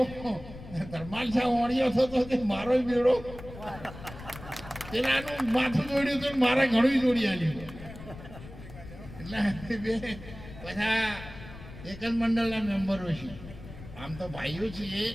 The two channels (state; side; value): noise; left; rumble, 15 dB below the sound